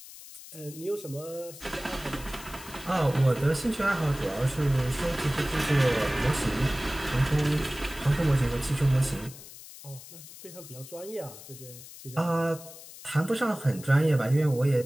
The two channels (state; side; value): noise; left; hiss, 16 dB below the sound